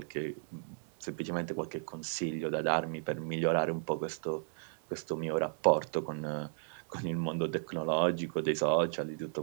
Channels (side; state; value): left; silent; digital silence